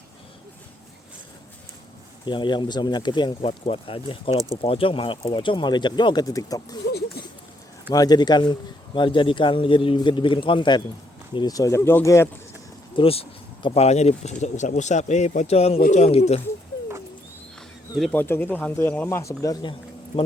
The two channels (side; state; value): both; normal; correlation 0.73